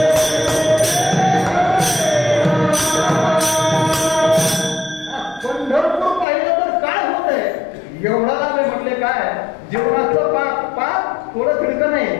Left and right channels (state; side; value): drops out; right; at 6.2 s